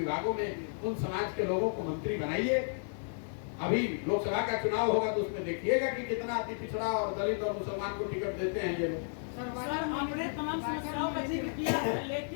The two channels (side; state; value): right; silent; digital silence